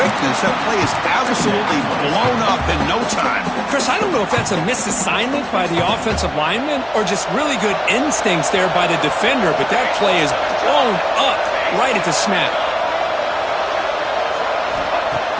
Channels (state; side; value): identical; both; correlation 1.00